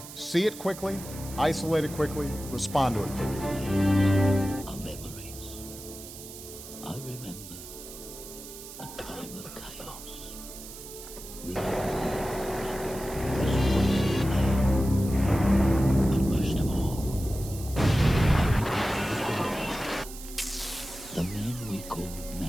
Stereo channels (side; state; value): right; noise; hiss, 14 dB below the sound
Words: see it quickly, isolate it quickly, respond to it quickly. Our memories. I remember a time of chaos. But most of all, the man we called